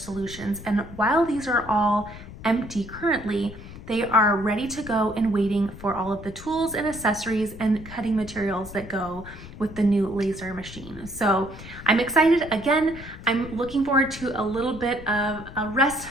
And while these are all empty currently, they are ready to go and waiting for all of the tools and accessories and cutting materials that go with the new laser machine. So I'm excited. Again, I'm looking forward to a little bit of a rest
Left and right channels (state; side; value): noise; left; rumble, 15 dB below the sound